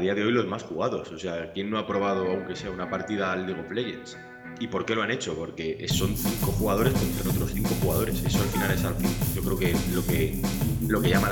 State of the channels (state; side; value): identical; both; correlation 1.00